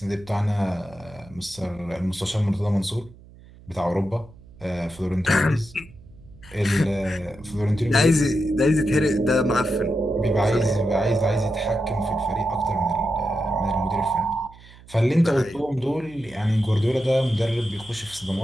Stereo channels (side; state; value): right; noise; hum, 22 dB below the sound